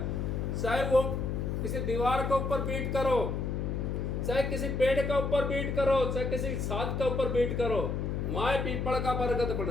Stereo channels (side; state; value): left; noise; hum, 1 dB below the sound